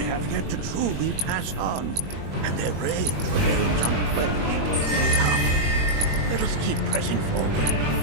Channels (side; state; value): left; late; 21 ms